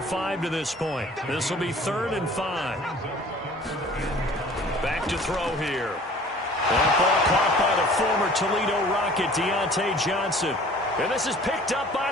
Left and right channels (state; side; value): normal; both; correlation 0.49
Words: to this point. This will be 3rd and 5. Back to throw here. That ball caught by the former Toledo Rocket, Deontay Johnson. And this is picked up by